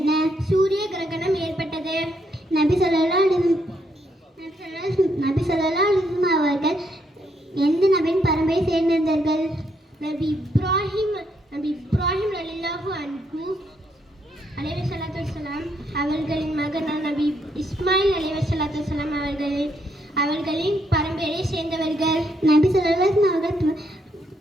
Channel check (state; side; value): normal; both; correlation 0.75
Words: சூரிய கிரகணம் ஏற்பட்டது. நபி ஸல்லல்லாஹு அலைஹி வஸல்லம் அவர்கள் எந்த நபியின் பரம்பரை சேர்ந்திருந்தார்கள்? நபி இப்ராஹிம் ரலியல்லாஹு அன்ஹு அலைஹி ஸலாத்து வஸலாம் அவர்களின் மகனான நபி இஸ்மாயில் அலைஹி ஸலாத்து வஸலாம் அவர்களின் பரம்பரையை சேர்ந்தவர்கள். நபி ஸல்லல்லாஹு அலைஹி வஸல்லம் அவர்கள்